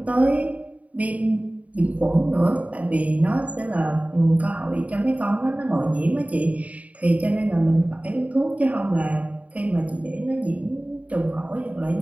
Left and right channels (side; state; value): left; late; 0.068 ms